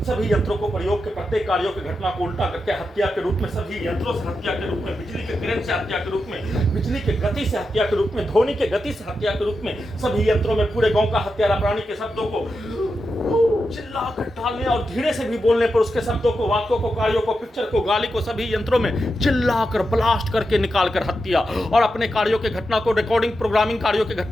सभी यंत्रों को प्रयोग के प्रत्येक कार्यों की घटना को उल्टा करके हत्या के रूप में, सभी यंत्रों से हत्या के रूप में, बिजली के करंट से हत्या के रूप में, बिजली के गति से हत्या के रूप में, ध्वनि के गति से हत्या के रूप में, सभी यंत्रों में पूरे गांव का हत्यारा प्राणी के शब्दों को चिल्लाकर डालने और धीरे से भी बोलने पर उसके शब्दों को, वाक्यों को, कार्यों को, पिक्चर को, गाली को सभी यंत्रों में चिल्लाकर ब्लास्ट करके निकालकर हत्या, और अपने कार्यों के घटना को, रिकॉर्डिंग प्रोग्रामिंग कार्यों की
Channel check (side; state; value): both; normal; correlation 0.88